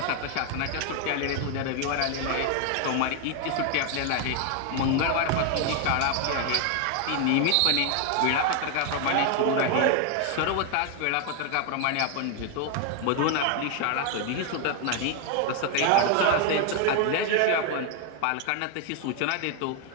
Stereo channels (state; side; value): different; both; correlation 0.00